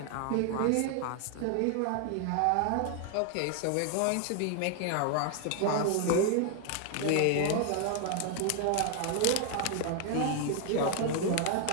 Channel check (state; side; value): different; both; correlation 0.00